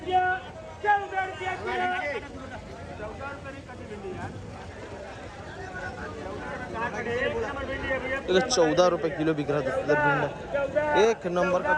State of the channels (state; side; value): identical; both; correlation 1.00